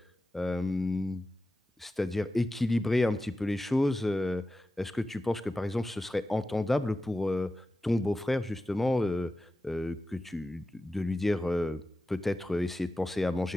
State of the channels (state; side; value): normal; both; correlation 0.93